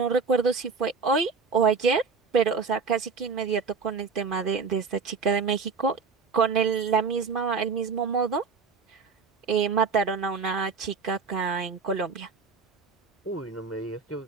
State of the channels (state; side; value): quieter; left; 5.0 dB